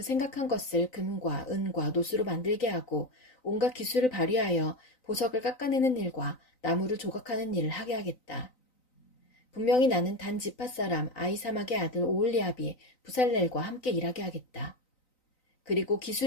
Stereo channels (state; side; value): late; right; 3.9 ms